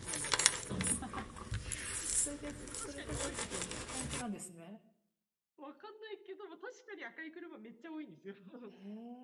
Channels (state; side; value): identical; both; correlation 1.00